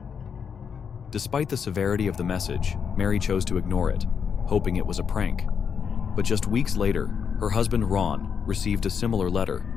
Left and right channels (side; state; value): right; quieter; 6.8 dB